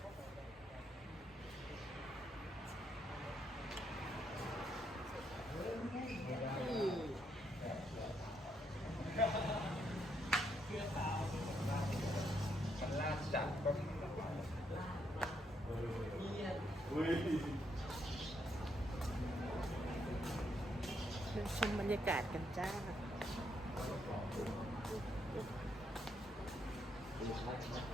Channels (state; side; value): normal; both; correlation 0.77